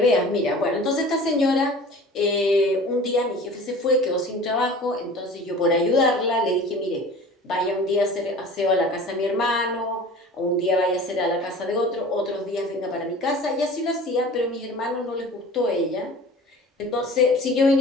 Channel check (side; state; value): both; normal; correlation 0.41